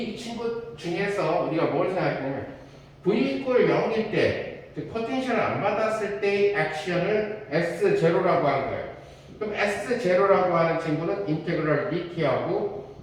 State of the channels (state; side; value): identical; both; correlation 1.00